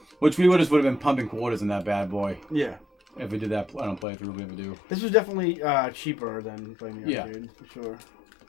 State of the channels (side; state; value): right; drops out; at 4.0 s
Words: Which we would have been pumping quarters in that bad boy. Yeah. If we did that on a playthrough, we ever do. This was definitely cheaper than playing the arcade, for sure.